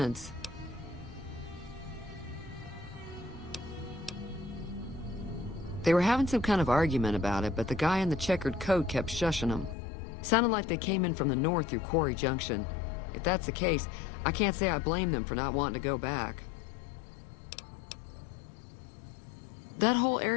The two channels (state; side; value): drops out; right; at 9.8 s